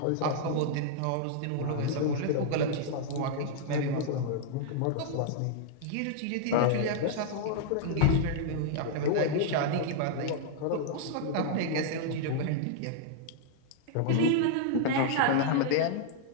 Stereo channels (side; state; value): both; different; correlation -0.01